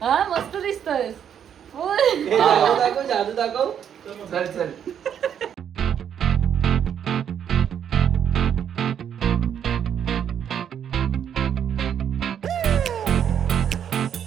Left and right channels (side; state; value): left; quieter; 8.8 dB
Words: हा मस्त दिसतोस. जादू दाखव. चल